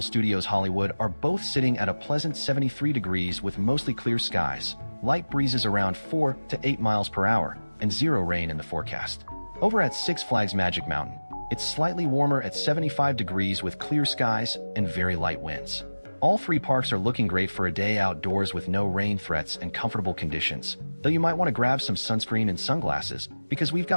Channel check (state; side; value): inverted; both; correlation -1.00